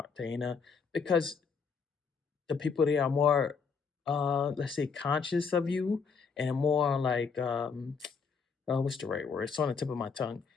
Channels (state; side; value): quieter; right; 5.5 dB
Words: because the people there are more let's say conscious of you and more like what's the right word? It's on the tip of my tongue.